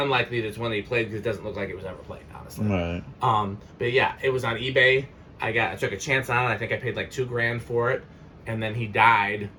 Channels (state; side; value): identical; both; correlation 1.00